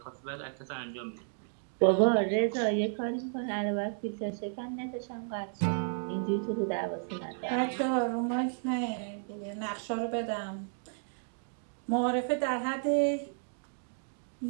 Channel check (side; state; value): left; silent; digital silence